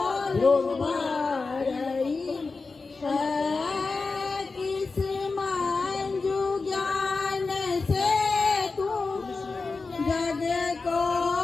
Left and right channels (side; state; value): right; quieter; 4.1 dB